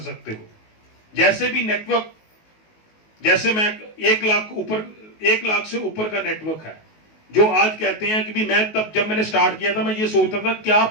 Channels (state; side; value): late; right; 19 ms